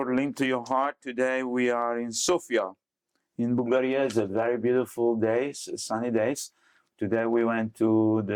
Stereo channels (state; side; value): identical; both; correlation 1.00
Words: linked to your heart. Today we are in Sofia, in Bulgaria. It's a very beautiful day, sunny days. Today we went to